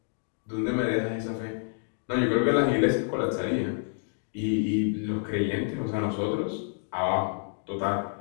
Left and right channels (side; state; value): right; silent; 57 dB below the other